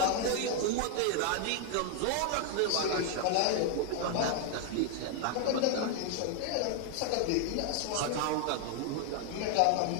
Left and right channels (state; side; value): different; both; correlation 0.00